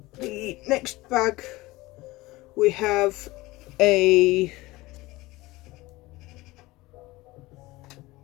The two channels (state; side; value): quieter; right; 20.0 dB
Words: the next bag, we have a